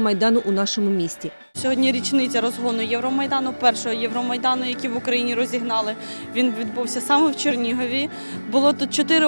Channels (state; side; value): inverted; both; correlation -1.00